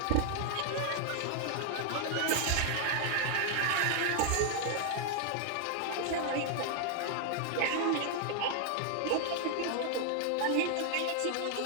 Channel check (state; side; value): different; both; correlation 0.00